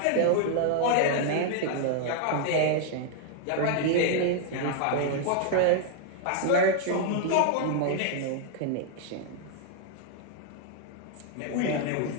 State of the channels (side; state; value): both; different; correlation 0.00